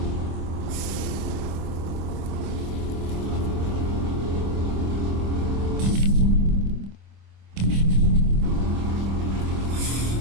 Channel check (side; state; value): left; late; 25 ms